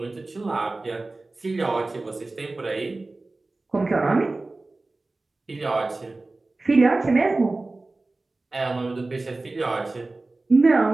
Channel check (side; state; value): left; quieter; 3.2 dB